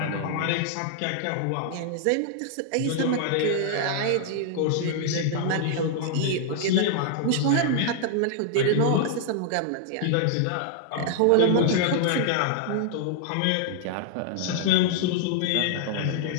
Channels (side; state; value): both; different; correlation -0.01